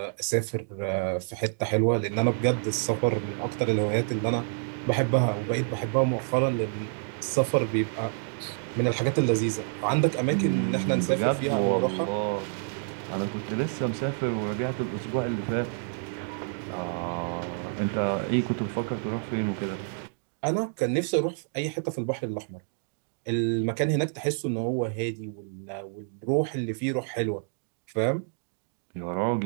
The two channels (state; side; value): silent; left; digital silence